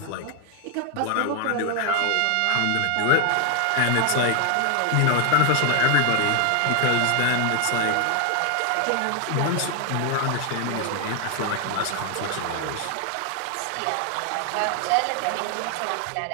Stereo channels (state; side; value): different; both; correlation 0.00